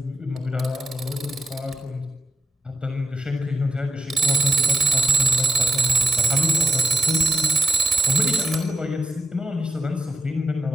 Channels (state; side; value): normal; both; correlation 0.86